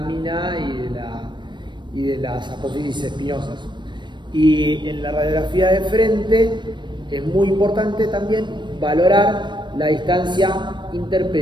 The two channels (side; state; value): left; late; 0.22 ms